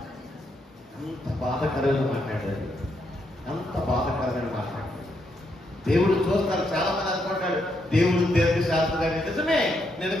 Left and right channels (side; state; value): both; normal; correlation 0.78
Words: అంత బాధకరమైన మాట్లాడాడు. అంత బాధకరమైన మాట్లాడాడు. దేవుడు చూస్తాడు. చాలా మంది అనుకుంటాడు దేవుడు దీర్ఘశాస్త్రుడు. నిజమే, నేను